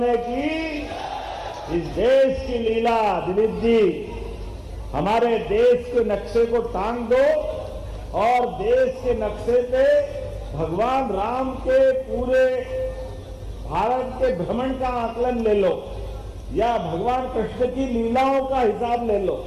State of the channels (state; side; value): identical; both; correlation 1.00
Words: की। इस देश की लीला दिलीप जी, हमारे देश के नक्शे को टांग दो और देश के नक्शे पे भगवान राम के पूरे भारत के भ्रमण का आकलन ले लो या भगवान कृष्ण की लीलाओं का हिसाब ले लो।